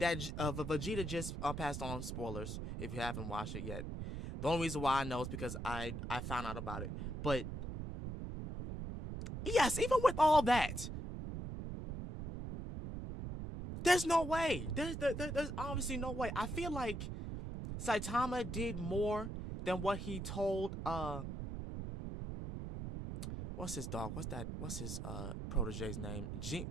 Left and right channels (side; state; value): right; noise; rumble, 6 dB below the sound